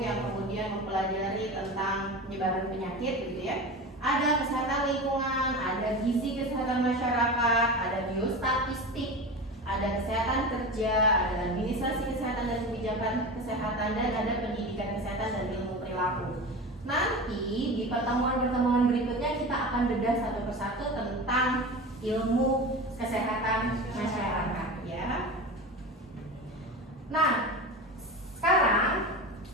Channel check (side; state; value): both; normal; correlation 0.28